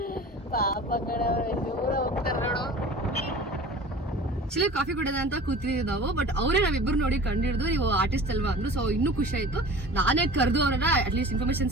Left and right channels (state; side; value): normal; both; correlation 0.40